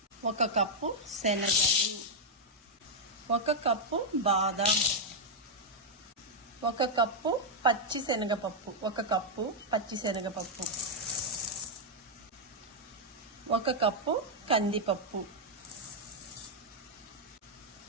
1 కప్పు శనగలు, 1 కప్పు బాదం, 1 కప్పు పచ్చిశనగపప్పు, 1 కప్పు పచ్చిశనగపప్పు, 1 కప్పు కందిపప్పు,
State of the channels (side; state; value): both; normal; correlation -0.02